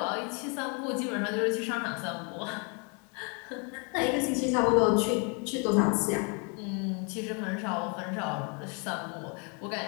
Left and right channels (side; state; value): right; quieter; 35.5 dB